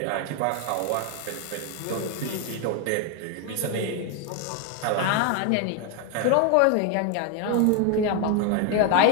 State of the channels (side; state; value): both; different; correlation 0.01